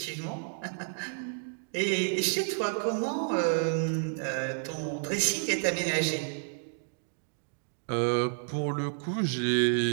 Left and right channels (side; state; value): left; silent; digital silence